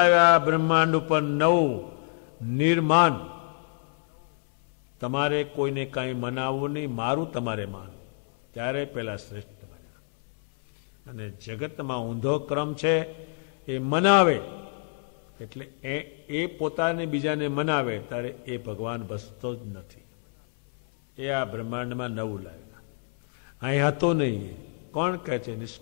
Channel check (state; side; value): silent; right; 60 dB below the other